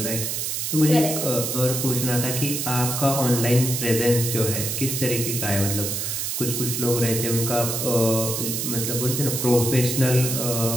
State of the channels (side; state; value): right; noise; hiss, 2 dB below the sound